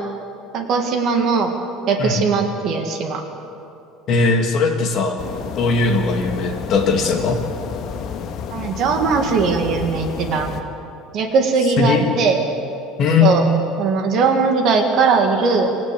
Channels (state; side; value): normal; both; correlation 0.42